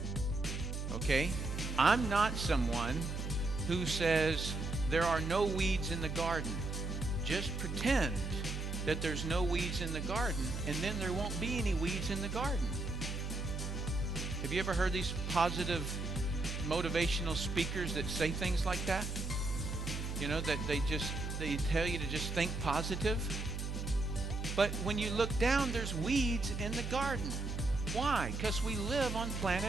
Okay? I'm not someone who says there are no weeds in the garden. Just pretend that there's no weeds in the garden, and then there won't be any weeds in the garden. Have you ever heard these positive motivational speakers that say things like that? You know, that they tell you to just think positive. But when you look down, there's weeds in the garden. Why? Because we live on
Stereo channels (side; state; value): right; noise; hum, 4 dB below the sound